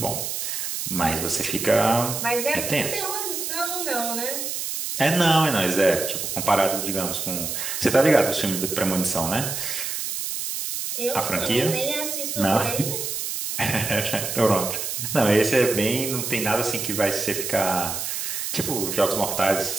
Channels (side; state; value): right; noise; hiss, 3 dB below the sound